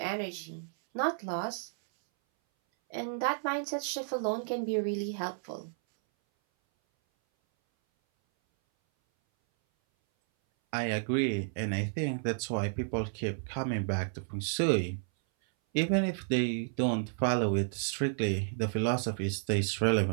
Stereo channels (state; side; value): silent; left; 57 dB below the other